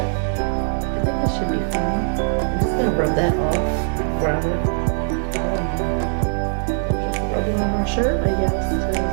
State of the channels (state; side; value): silent; left; digital silence